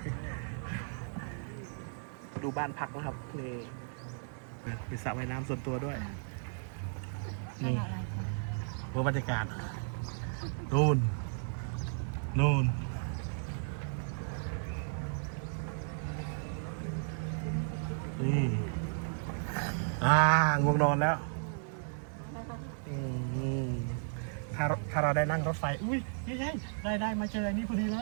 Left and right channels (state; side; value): silent; left; digital silence